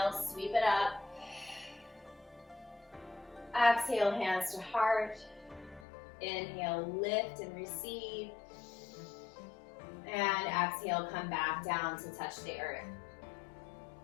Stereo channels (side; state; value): right; drops out; at 5.9 s